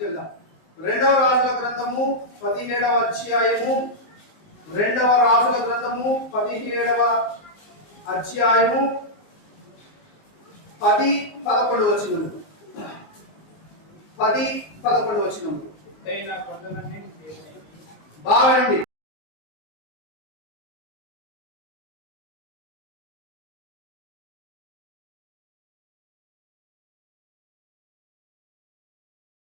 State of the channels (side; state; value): right; late; 19 ms